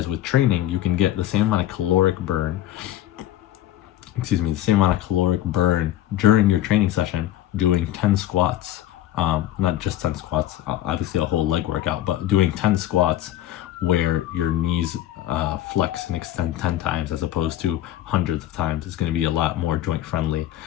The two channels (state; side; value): quieter; right; 13.3 dB